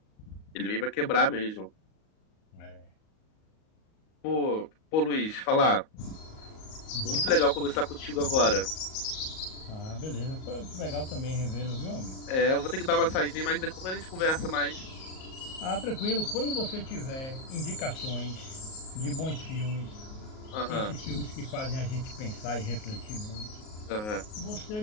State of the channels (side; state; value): right; late; 38 ms